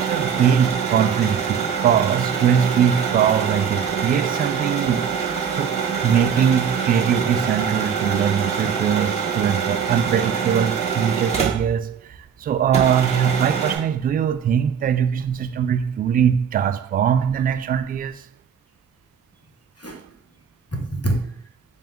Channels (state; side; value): quieter; left; 7.5 dB